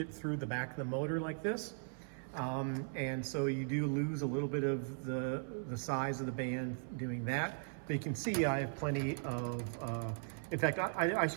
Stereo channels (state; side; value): silent; left; 52 dB below the other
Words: through the back of the motor like this. And so you do lose a little bit of the size of the band doing that. But you can see I have plenty of, in fact, I